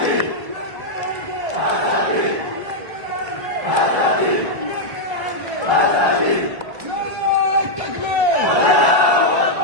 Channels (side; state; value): left; late; 1.0 ms